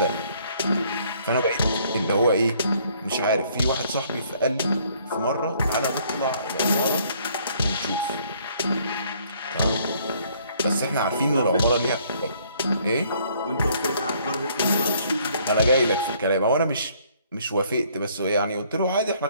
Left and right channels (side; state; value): both; inverted; correlation -0.63